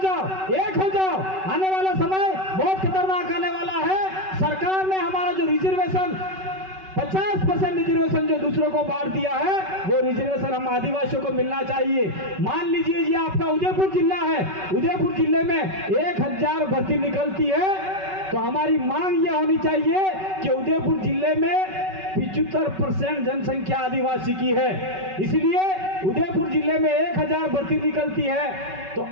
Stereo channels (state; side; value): late; left; 5.3 ms